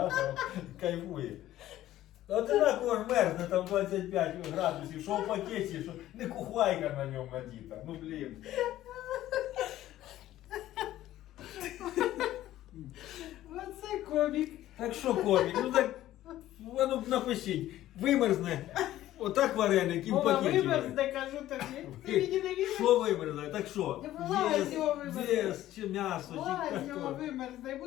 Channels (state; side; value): quieter; right; 14.0 dB